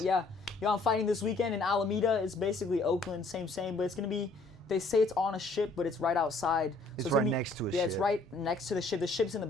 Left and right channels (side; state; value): right; quieter; 3.2 dB